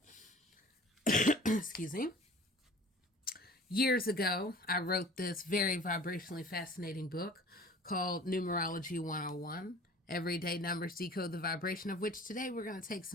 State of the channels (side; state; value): both; normal; correlation 0.46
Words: excuse me. Years ago, I wrote this very vibrationally fascinating book called Numerology 101. Everyday numbers decode the vibration, of which today we're going to take